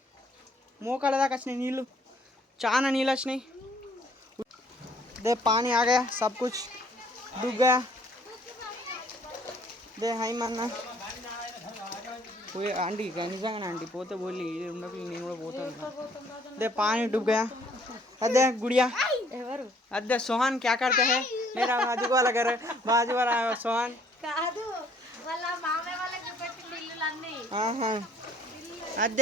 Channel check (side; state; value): both; normal; correlation 0.61